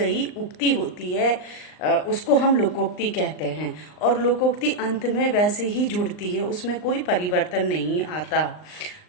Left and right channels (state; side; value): late; right; 39 ms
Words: उक्ति होती है, उसको हम लोकोक्ति कहते हैं। और लोकोक्ति अंत में वैसे ही जुड़ती है, उसमें कोई परिवर्तन नहीं आता।